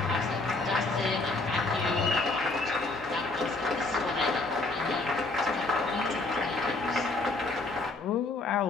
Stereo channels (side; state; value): right; quieter; 3.3 dB